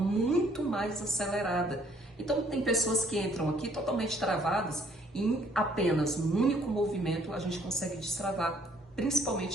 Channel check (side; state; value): both; normal; correlation 0.63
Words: mais acelerada. Então tem pessoas que entram aqui totalmente travadas e em apenas um único movimento a gente consegue destravar,